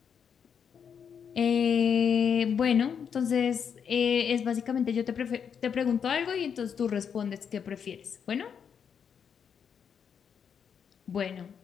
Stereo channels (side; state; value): right; quieter; 7.3 dB